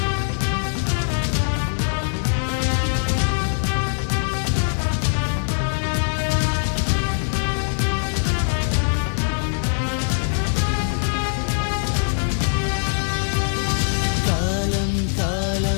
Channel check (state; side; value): silent; right; digital silence